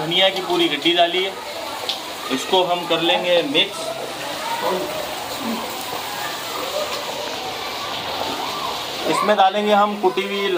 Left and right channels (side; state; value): both; identical; correlation 1.00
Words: की पूरी गड्डी डाली है। इसको हम कर लेंगे मिक्स। इसमें डालेंगे हम कुटी हुई